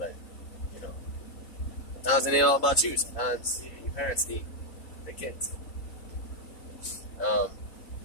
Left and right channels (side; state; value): right; late; 4.0 ms